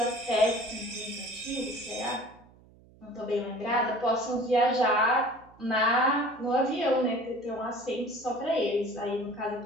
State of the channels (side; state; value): right; noise; hum, 26 dB below the sound